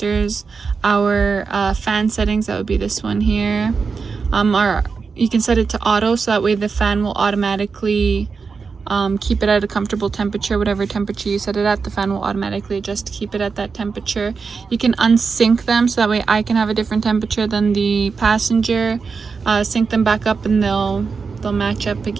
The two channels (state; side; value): quieter; left; 5.1 dB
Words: our fan settings. That would be this one here. You can set it to auto, so that way the fan will automatically keep it at a comfortable temperature. Whatever temperature you set it at, the fan will automatically adjust to keep it at that temperature. You can unsync them, so that way I can have a different temperature than the passenger. Sync them back up and they'll match up